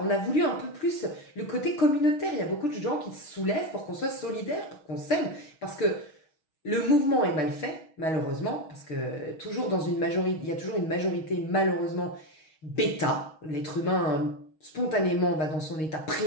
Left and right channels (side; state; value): right; late; 6.3 ms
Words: on a voulu un peu plus le côté communautaire. Il y a beaucoup de gens qui se soulèvent pour qu'on soit solidaires, pour qu'on s'aime, parce que le mouvement est mal fait, malheureusement, parce que toujours dans une majorité, il y a toujours une majorité, malheureusement, bêta. L'être humain, spontanément, va dans son état